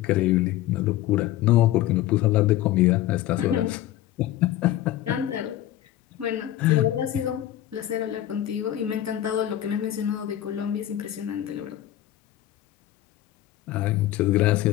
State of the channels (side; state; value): right; quieter; 13.4 dB